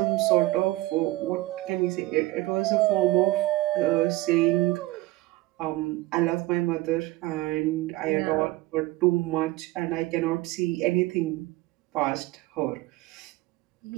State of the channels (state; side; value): quieter; left; 19.0 dB